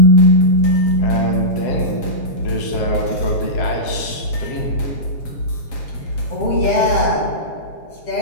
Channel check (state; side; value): late; right; 7.4 ms